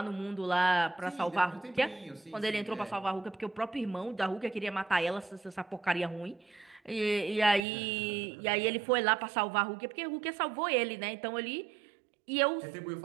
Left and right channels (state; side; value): drops out; left; at 7.6 s